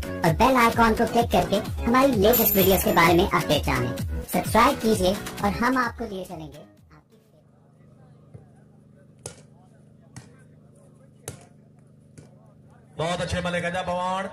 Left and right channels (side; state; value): both; identical; correlation 1.00